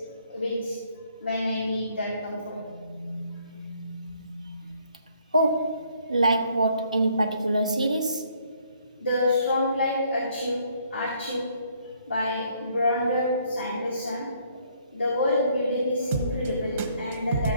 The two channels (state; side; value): inverted; both; correlation -0.66